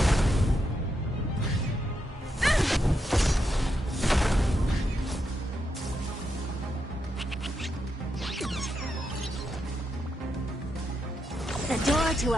The door to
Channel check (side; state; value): both; normal; correlation 0.83